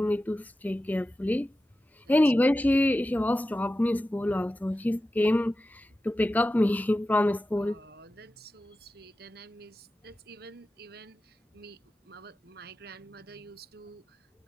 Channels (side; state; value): both; normal; correlation 0.93